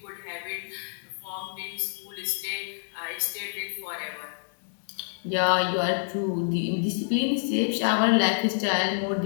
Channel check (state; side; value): silent; right; digital silence